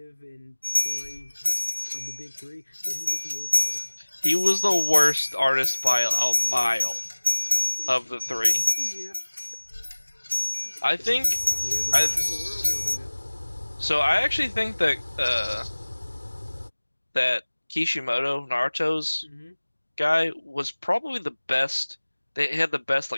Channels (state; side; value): inverted; both; correlation -1.00